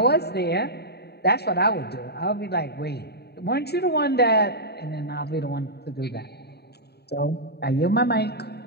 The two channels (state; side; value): late; right; 0.48 ms